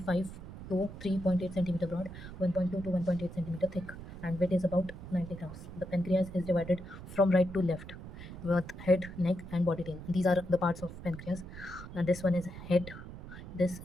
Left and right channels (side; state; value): right; noise; rumble, 12 dB below the sound